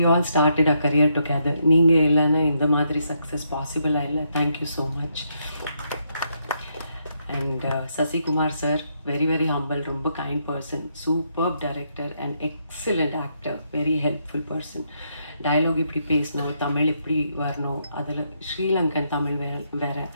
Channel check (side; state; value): both; inverted; correlation -0.77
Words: all started a career together. நீங்கள் இல்லைன்னா இந்த மாதிரி சக்ஸஸ் பாசிபிளாக இல்லை. Thank you so much. And Sasikumar sir, very very humble, ரொம்ப kind person, superb director and excellent actor, very helpful person. Dialogue இப்படி பேசணும், தமிழ் இப்படி வரணும், அதில் ஸ்ரீலங்கன் தமிழ் வேற.